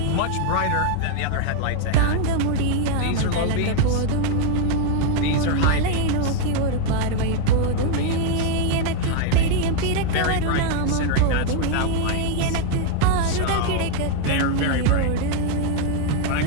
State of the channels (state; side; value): different; both; correlation 0.00